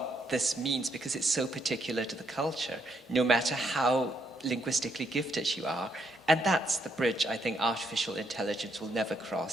this means because it's so particular to the culture, no matter how linguistically gifted you are. And that's the bridge I think artificial intelligence will never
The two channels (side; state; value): both; normal; correlation 0.75